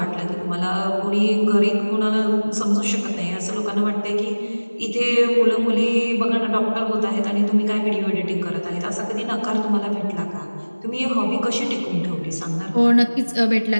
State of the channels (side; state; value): both; inverted; correlation -1.00